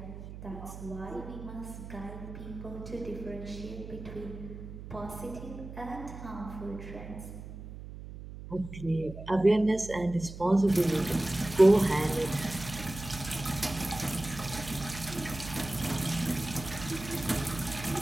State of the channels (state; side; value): noise; right; hum, 12 dB below the sound